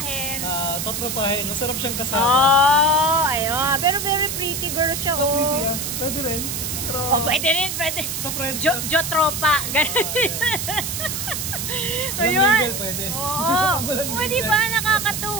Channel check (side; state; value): right; noise; hiss, 4 dB below the sound